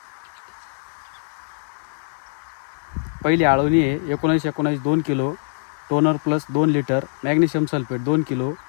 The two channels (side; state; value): right; silent; 60 dB below the other